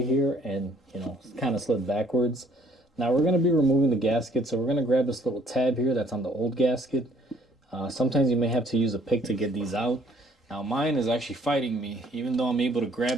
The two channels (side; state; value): both; normal; correlation 0.62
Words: here and, kind of slid backwards. Now we're going to be removing the gasket, so we're going to grab this little tab here that's on the old gasket. Sometimes you may have to use a pick to get these out. Now mine is actually fighting me. Even though I'm able to